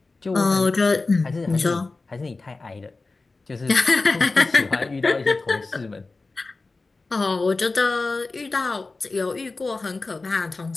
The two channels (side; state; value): right; quieter; 3.6 dB